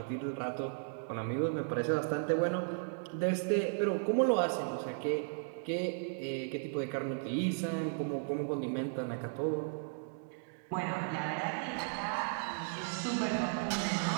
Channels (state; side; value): silent; left; digital silence